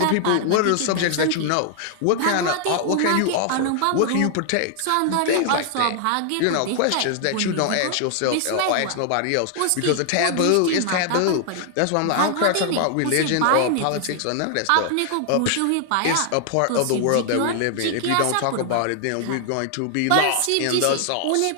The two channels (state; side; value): different; both; correlation 0.00